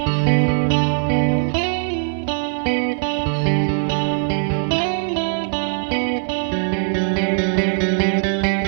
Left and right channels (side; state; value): left; silent; 59 dB below the other